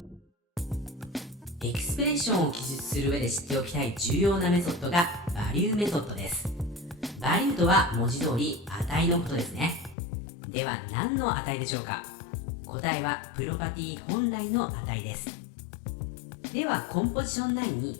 エクスプレッションを記述する上で知っておきたい重要なメソッドがバリューメソッドです。バリューとは文字通り値のことですね。では何の値でしょうか？答えはプロパティ本来の値です。ではコンポジション9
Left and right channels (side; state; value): right; drops out; at 10.0 s